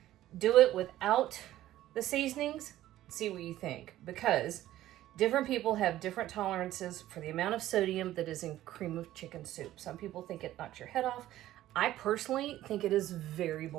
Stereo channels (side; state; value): left; quieter; 14.1 dB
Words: do it without the seasonings, see what you think. Because different people have different tolerances for the amount of sodium that is in cream of chicken soup. Some people think it knocks your head off. I personally think it is very